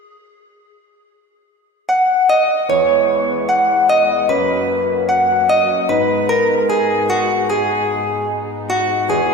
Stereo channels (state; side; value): normal; both; correlation 0.46